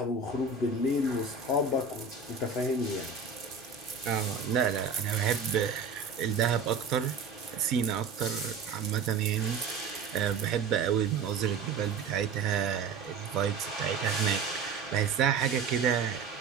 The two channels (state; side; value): quieter; left; 5.1 dB